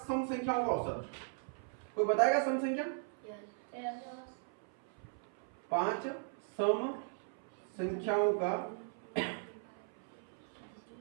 सम संख्याओं का औसत। कोई बताएगा सम संख्या? 5 सम संख्याओं का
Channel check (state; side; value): silent; left; 52 dB below the other